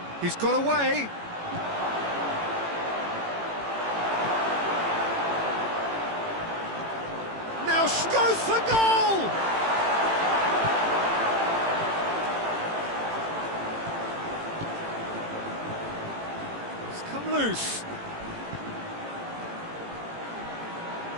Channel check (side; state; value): left; late; 18 ms